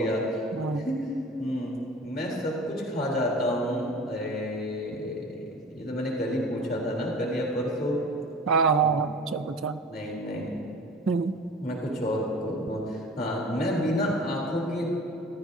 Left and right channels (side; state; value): both; normal; correlation 0.41